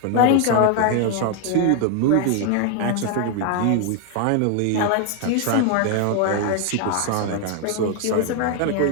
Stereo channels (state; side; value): different; both; correlation 0.00